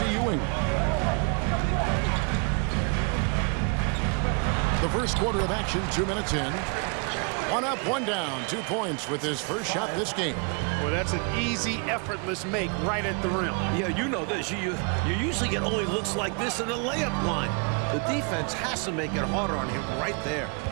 Ewing. The first quarter of action, 2 minutes in. 1 up, 1 down, 2 points with his first shot this game. Well, that's an easy, effortless make right at the rim. Yeah, you know this. You usually get only looks like this in the layup line. The defense has to make it harder on him right there.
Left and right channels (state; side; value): quieter; left; 35.9 dB